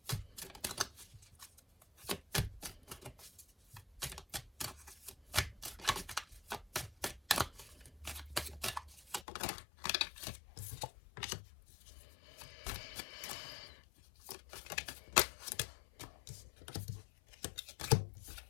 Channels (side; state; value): right; drops out; at 9.2 s